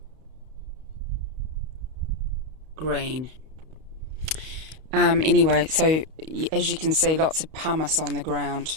Green. Anyway, so as you can see, lots of pumice on the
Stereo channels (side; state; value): left; late; 31 ms